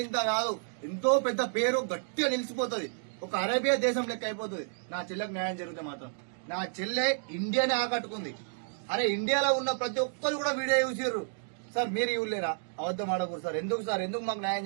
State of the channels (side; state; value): left; silent; digital silence